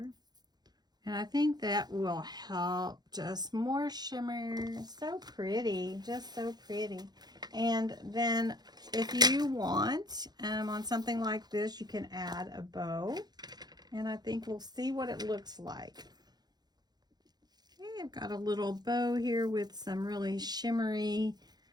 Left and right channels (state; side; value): late; left; 0.20 ms